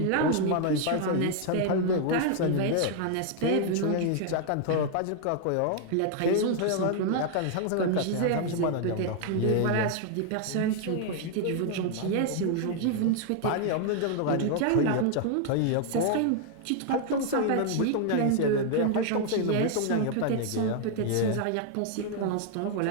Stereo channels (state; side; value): different; both; correlation 0.00